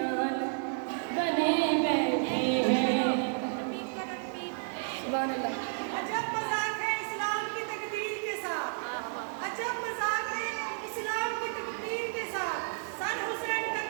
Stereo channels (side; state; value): left; silent; 57 dB below the other